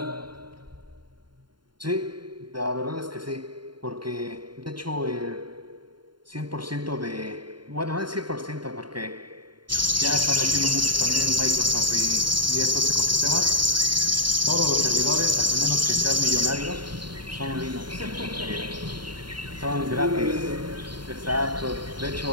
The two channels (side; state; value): left; late; 0.72 ms